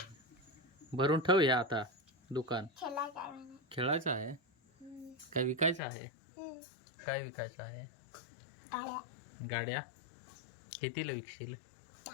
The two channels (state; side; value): drops out; right; at 5.8 s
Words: भरून ठेव या आता दुकान खेळायचं खेळायचं आहे काय विकायचं आहे काय विकायचं आहे गाड्या गाड्या कितीला विकशील